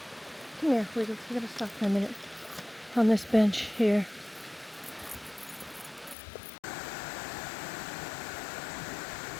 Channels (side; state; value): right; drops out; at 6.2 s